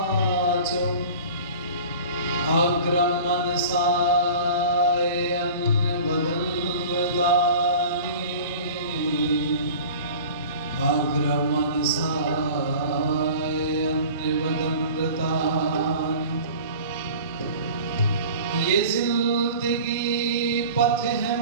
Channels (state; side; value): inverted; both; correlation -0.41